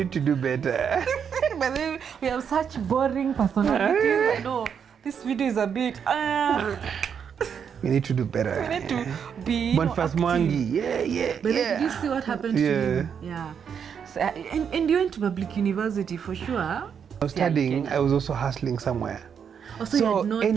to do better. But then we have such boring personalities. I know this video is a bit. We need to do better. We need to be. Boniface active. Mwangi. Yeah. But then did you see what happened to him? Yeah. So, and you went to public university for sure. I was studying. I was also hustling somewhere. Also, you had no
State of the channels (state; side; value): quieter; left; 7.4 dB